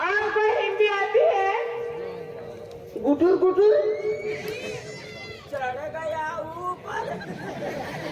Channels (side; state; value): both; identical; correlation 1.00